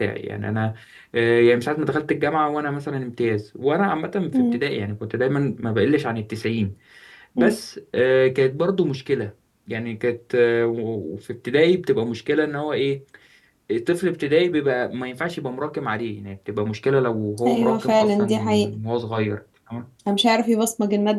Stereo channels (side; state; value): both; identical; correlation 1.00